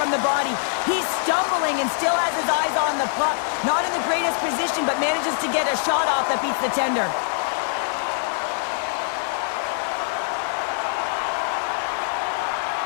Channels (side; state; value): right; silent; digital silence